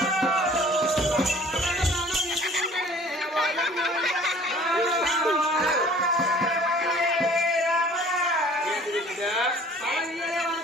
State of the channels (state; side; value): normal; both; correlation 0.50